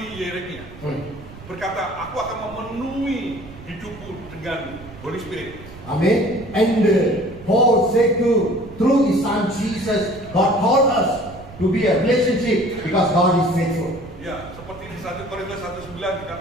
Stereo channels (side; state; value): right; noise; rumble, 17 dB below the sound